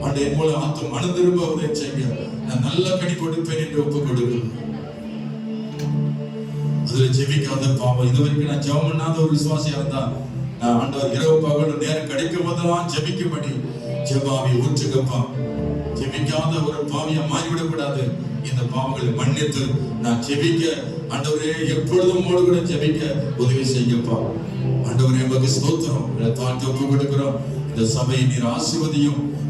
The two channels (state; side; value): identical; both; correlation 1.00